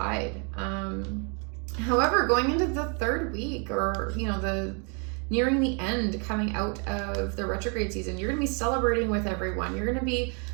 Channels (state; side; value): quieter; left; 37.2 dB